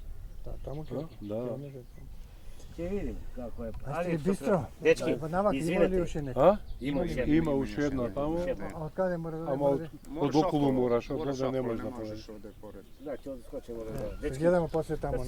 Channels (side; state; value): both; identical; correlation 1.00